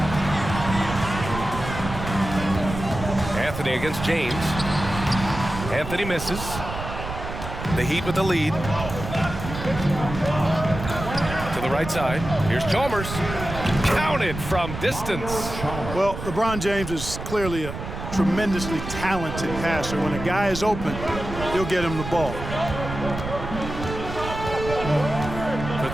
Anthony against James. Anthony misses. The Heat with the lead. To the right side. Here's Chalmers. Counted from distance. Well, LeBron James is clearly a tremendously talented passer. When a guy is open, he'll get him the ball. For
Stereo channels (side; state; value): right; noise; rumble, 8 dB below the sound